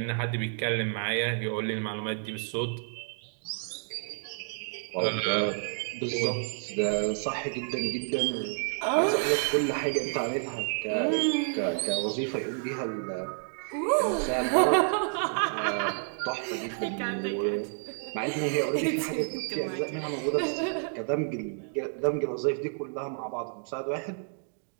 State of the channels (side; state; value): left; silent; 58 dB below the other